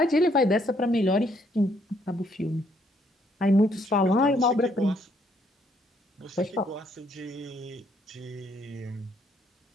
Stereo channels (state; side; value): normal; both; correlation 0.69